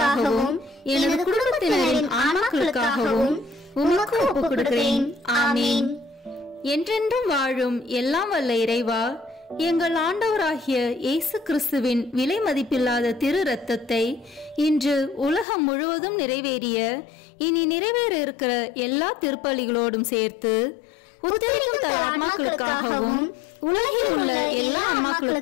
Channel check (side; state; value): right; drops out; at 15.5 s